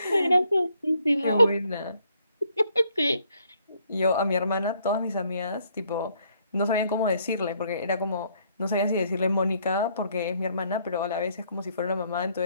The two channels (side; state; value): both; inverted; correlation -0.69